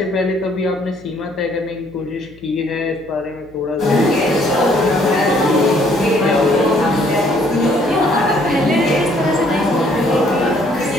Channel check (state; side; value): noise; left; hum, 25 dB below the sound